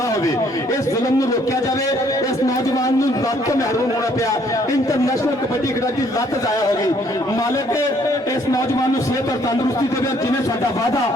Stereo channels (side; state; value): both; normal; correlation 0.64